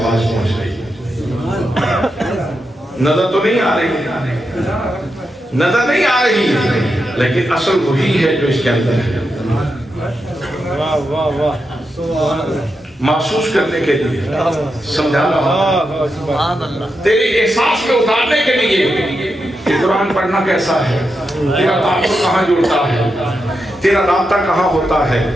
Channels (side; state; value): both; normal; correlation 0.86